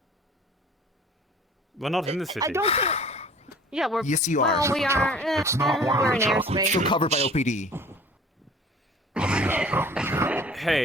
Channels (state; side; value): normal; both; correlation 0.47